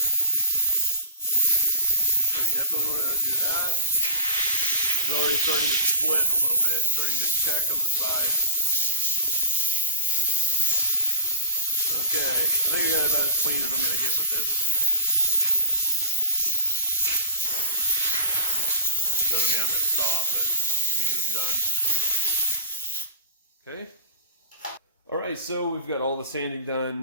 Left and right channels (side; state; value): both; inverted; correlation -0.39